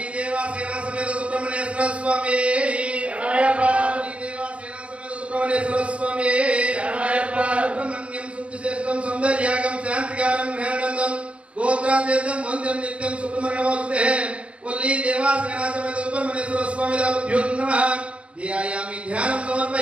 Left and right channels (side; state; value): left; late; 0.062 ms